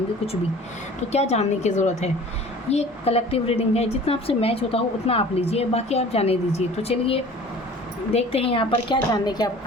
कुछ भी, तो क्या जानने की ज़रूरत है। ये कलेक्टिव रीडिंग है, जितना आपसे मैच होता हो उतना आप लीजिए, बाकी आप जाने दीजिए। तो चलिए देखते हैं यहाँ पर क्या जानने की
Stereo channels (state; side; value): normal; both; correlation 0.45